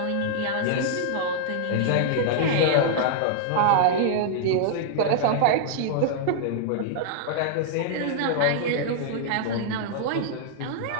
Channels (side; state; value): both; different; correlation -0.01